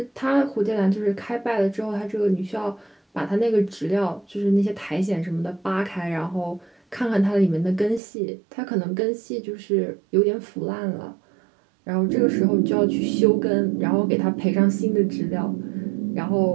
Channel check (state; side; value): drops out; left; at 8.0 s